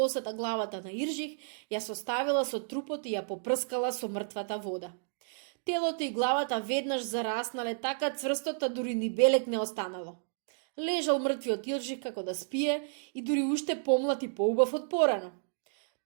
главата на Иржих, ја составила со трупот и ја попрскала со мртвата вода. Телото и главата веднаш зараснале така цврсто, дури ни белек не останало. Лежал мртвиот Иржих како да спие и дури уште помлад и поубав од порано.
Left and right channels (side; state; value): left; silent; digital silence